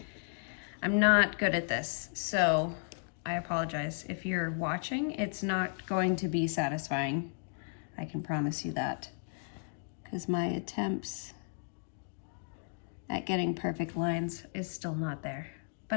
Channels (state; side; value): silent; right; 55 dB below the other